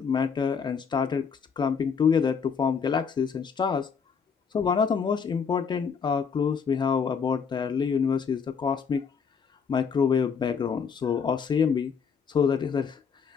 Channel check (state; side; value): quieter; right; 6.2 dB